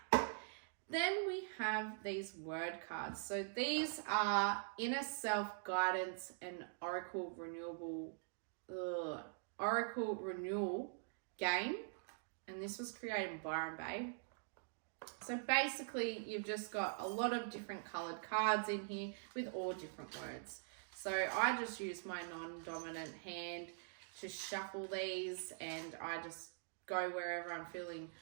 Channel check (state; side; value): silent; left; digital silence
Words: Then we have these word cards. So these are Inner Self Guidance and Oracle Renewal game. And this was created in Byron Bay. So basically, you've just got a lot of different coloured cards in here with all different words. So I just use my non-dominant hand to shuffle these, and I just go wherever I'm feeling